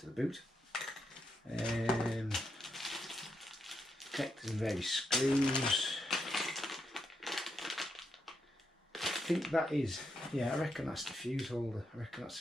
the boot. Connectors and various screws. I think that is, yeah, I reckon that's the fuse holder. I reckon that's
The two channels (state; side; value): normal; both; correlation 0.82